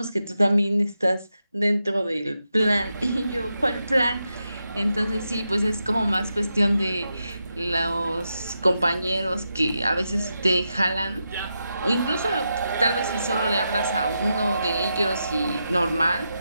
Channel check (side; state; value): both; inverted; correlation -0.86